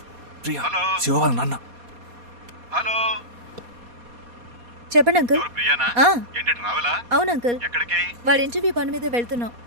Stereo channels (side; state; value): left; late; 4.2 ms